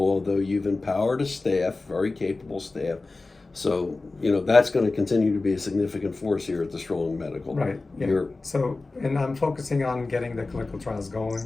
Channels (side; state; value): right; quieter; 3.5 dB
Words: you've empowered a staff, very capable staff. So, that's going to continue to be a significant force here at the Strong Medical. Right. Yeah. You're, So, and I'm focusing on getting the clinical trials